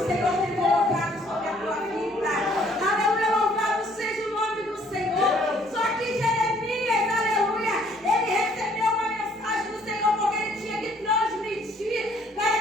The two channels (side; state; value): both; normal; correlation 0.62